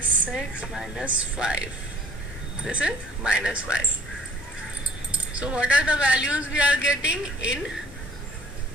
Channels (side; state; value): both; normal; correlation 0.54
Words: 6 minus 5. This is minus 5. So what are the values we are getting in?